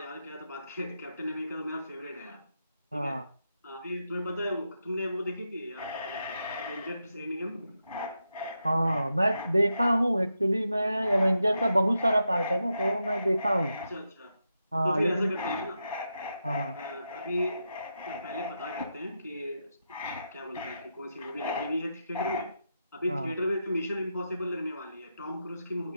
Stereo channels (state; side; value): inverted; both; correlation -0.86